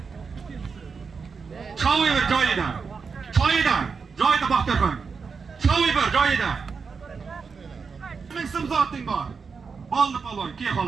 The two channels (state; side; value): quieter; left; 5.3 dB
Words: Cho'y ber joyida. Joyida Baxtiyor. Cho'y ber joyida. Ming so'm zoting bor. Bo'ldi polvon, kel